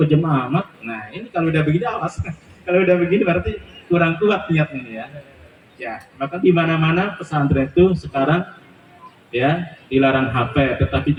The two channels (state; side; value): identical; both; correlation 1.00